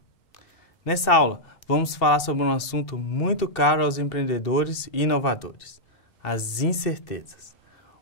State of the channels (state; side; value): late; right; 2.7 ms